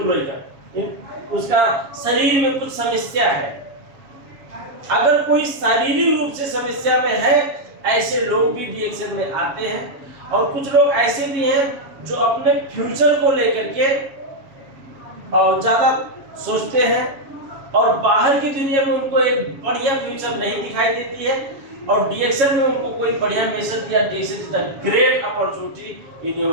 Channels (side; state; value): left; late; 7.2 ms